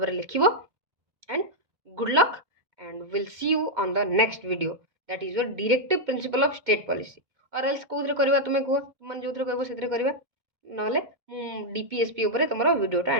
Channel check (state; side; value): late; left; 2.1 ms